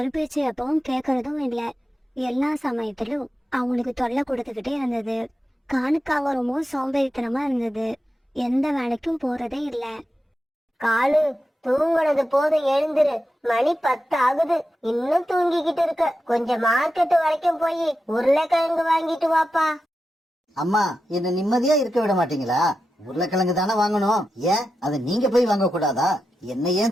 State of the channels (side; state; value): both; normal; correlation 0.90